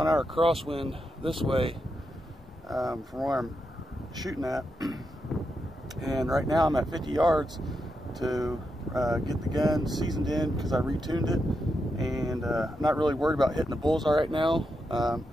an hour crosswind this way from where I'm shooting at. And right now I'm at 50 yards to get the gun seasoned in because I retuned it. And I'm not really worried about hitting the bullseye right now.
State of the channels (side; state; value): both; normal; correlation 0.85